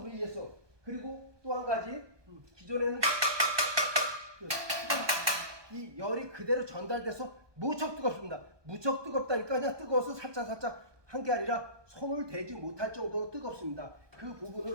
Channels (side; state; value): left; late; 1.2 ms